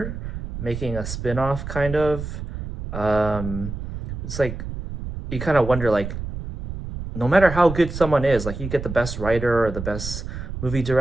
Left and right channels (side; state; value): right; noise; rumble, 7 dB below the sound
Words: making a spin-off kind of. It's like you kind of wonder, like, no matter how good someone is, like you get the best writer or the best movie